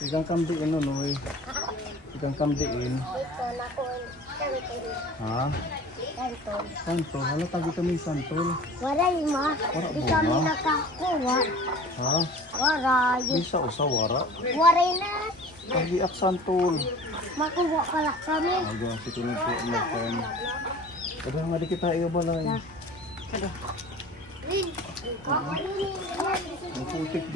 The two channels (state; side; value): normal; both; correlation 0.42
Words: Igang kamdiin noy. Igang kamdiin. Ha? Santol. Hala tagi kami santol. Waray ma. Di kami nakakuha. Ha? Waray. Bisa usa wara. Waray na. Tagi ak santol. Makuha pala kami. Aga si kuno po makan. Kadang nga di kita iyo balay. Ang putik